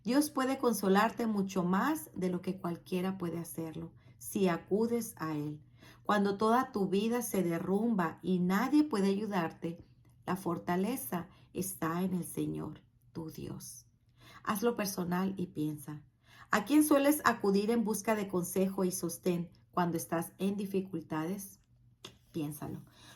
Dios puede consolarte mucho más de lo que cualquiera puede hacerlo, si acudes a Él. Cuando toda tu vida se derrumba y nadie puede ayudarte, la fortaleza está en el Señor, tu Dios. Hazlo personal y piensa: ¿a quién sueles acudir en busca de consejo y sostén cuando estás en dificultades? Piénsalo.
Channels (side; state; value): both; identical; correlation 1.00